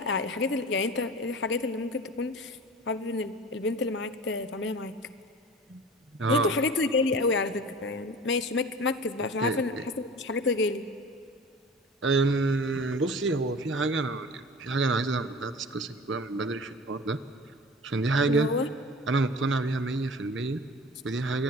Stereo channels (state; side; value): normal; both; correlation 0.39